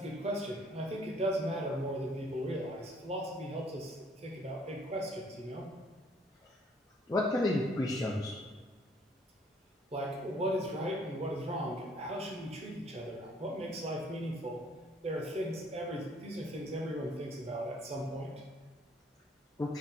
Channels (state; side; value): normal; both; correlation 0.62